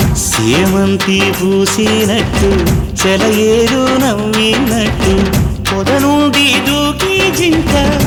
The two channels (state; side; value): identical; both; correlation 1.00